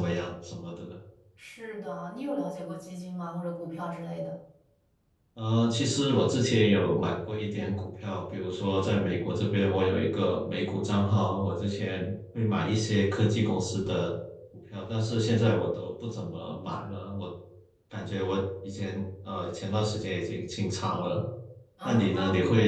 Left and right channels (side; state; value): both; identical; correlation 1.00